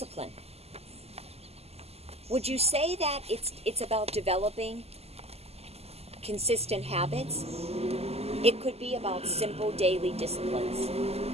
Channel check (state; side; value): late; left; 0.29 ms